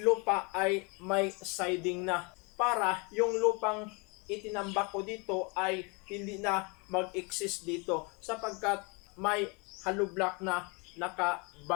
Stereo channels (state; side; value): quieter; right; 30.6 dB